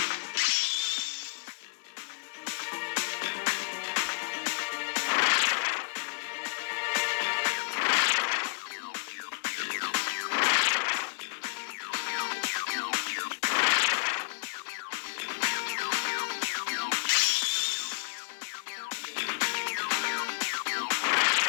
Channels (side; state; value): right; silent; digital silence